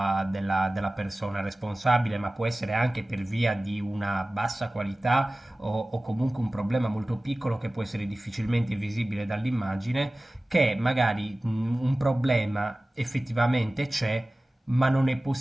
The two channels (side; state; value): both; normal; correlation 0.97